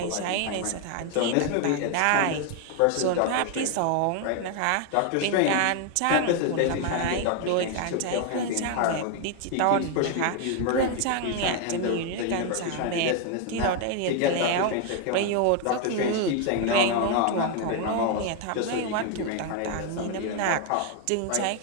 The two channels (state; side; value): different; both; correlation 0.01